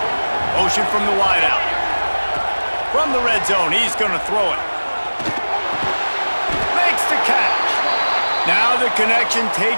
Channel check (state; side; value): inverted; both; correlation -1.00